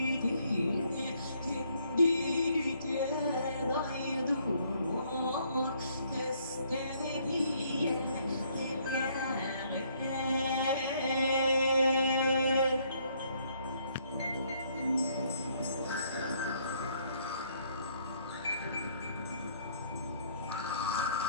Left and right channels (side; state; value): both; inverted; correlation -0.67